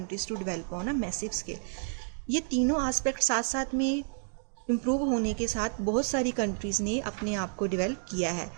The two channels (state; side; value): silent; left; digital silence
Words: to develop on a massive scale. ये तीनों एस्पेक्ट साथ साथ में इम्प्रूव होने के साथ बहुत सारी कंट्रीज़ ने अपने आप को डेवलप किया है।